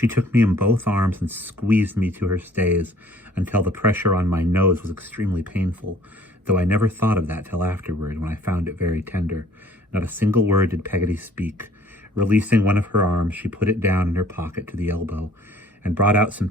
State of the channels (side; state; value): both; normal; correlation 0.56